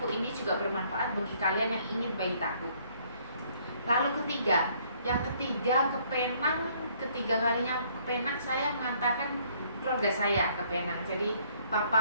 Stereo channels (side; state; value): both; inverted; correlation -0.64